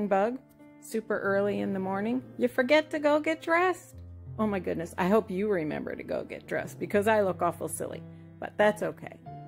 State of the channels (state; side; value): identical; both; correlation 1.00